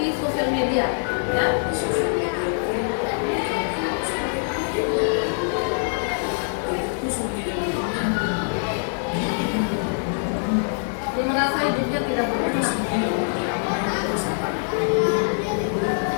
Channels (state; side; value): silent; right; digital silence